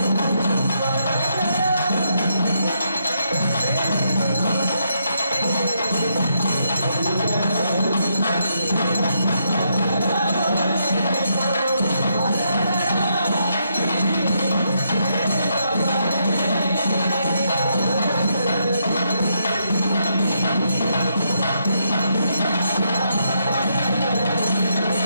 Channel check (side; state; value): both; inverted; correlation -0.78